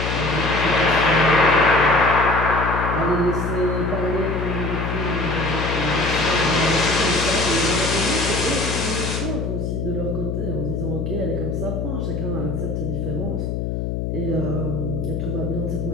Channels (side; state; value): left; noise; hum, 2 dB below the sound